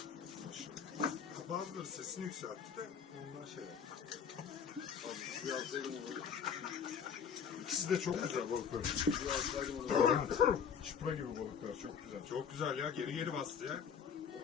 Bazıları sesini yükseltti de ondan şey yaptı. Abi suyu alsaydım onu. İkisi de çok güzel balıklar. Suyu alsaydım onu. Çipra gibi balıklar çok güzel. Çok güzel ya. Geri bastı ya.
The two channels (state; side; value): quieter; right; 7.1 dB